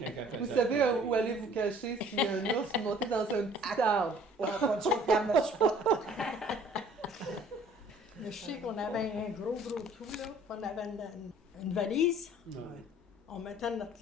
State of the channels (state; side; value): normal; both; correlation 0.54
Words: Vous faisait savez le- où aller vous cacher si un ours vous montez dans un petit arbre. On a pas de soupe dans notre spot. Je sais qu'on avait un gros trou, là. On avait une valise. Non. On mettait